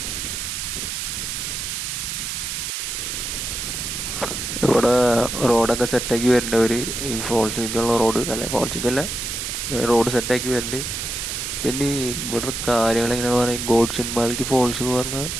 ഇവിടെ റോഡൊക്കെ സെറ്റാക്കി വരുന്നുണ്ട്. ഈ ഫോൾസിലേക്കുള്ള റോഡ്, അല്ല ഫോൾസിലേക്കല്ല, റോഡ് സെറ്റാക്കി വരുന്നുണ്ട്. പിന്നെ ഇവിടുത്തെ കാര്യങ്ങൾ എങ്ങനെയാണെന്ന് പറഞ്ഞാൽ, ഗോഡ്ചിൻമാൽക്കി ഫോൾസ് എന്ന് പറഞ്ഞാൽ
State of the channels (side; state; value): right; noise; hiss, 4 dB below the sound